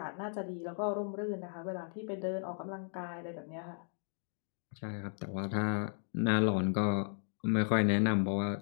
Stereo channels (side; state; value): right; silent; digital silence